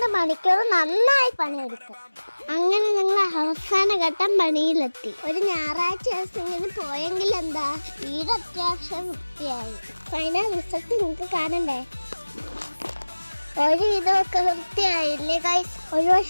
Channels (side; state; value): both; inverted; correlation -1.00